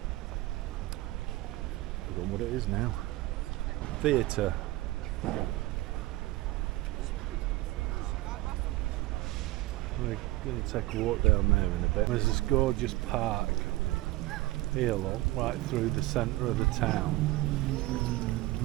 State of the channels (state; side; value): quieter; left; 18.8 dB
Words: know what it is now. Theatre. We're going to take a walk down there in a bit. There's this gorgeous park here, look, right through the centre of the town.